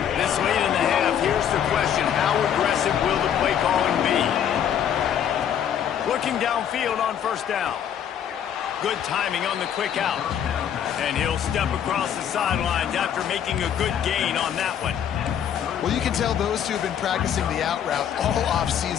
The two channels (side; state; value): right; quieter; 9.2 dB